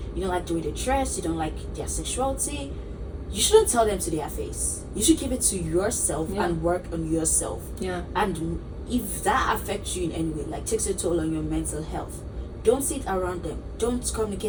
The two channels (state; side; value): identical; both; correlation 1.00